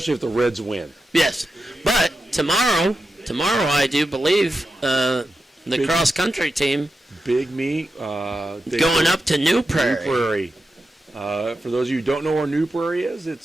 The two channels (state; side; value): normal; both; correlation 0.89